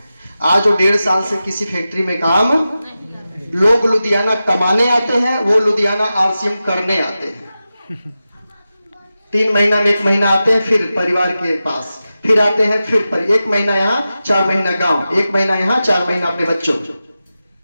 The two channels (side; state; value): both; inverted; correlation -0.93